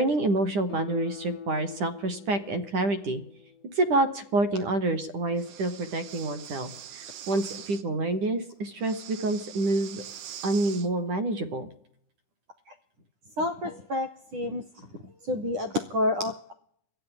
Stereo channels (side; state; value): left; late; 10 ms